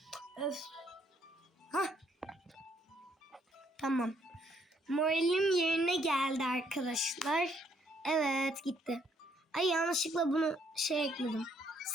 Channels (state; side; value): normal; both; correlation 0.69